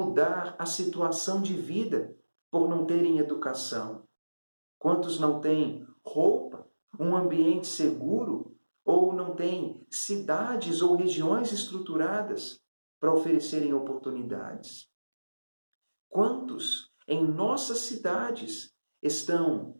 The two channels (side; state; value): both; inverted; correlation -1.00